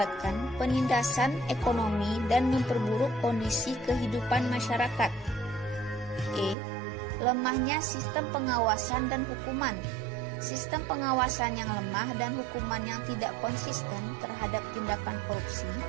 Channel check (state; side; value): drops out; left; at 6.6 s